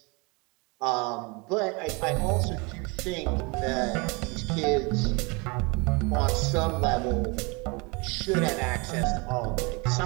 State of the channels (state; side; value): quieter; left; 28.8 dB